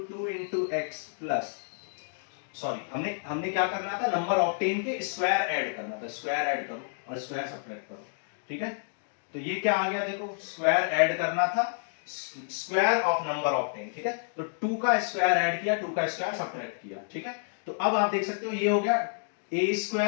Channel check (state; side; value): silent; right; digital silence